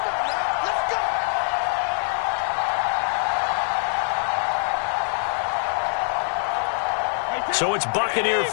So it's Buccaneer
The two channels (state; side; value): silent; right; 63 dB below the other